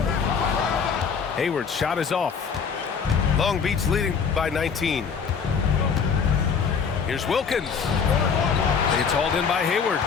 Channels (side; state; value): right; quieter; 6.2 dB